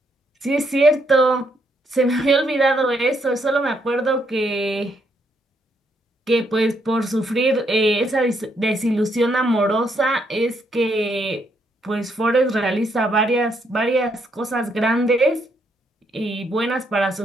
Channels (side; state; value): both; normal; correlation 0.74